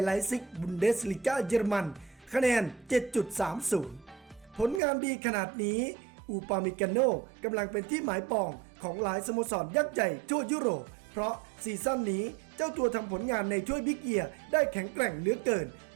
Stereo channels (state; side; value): drops out; left; at 4.8 s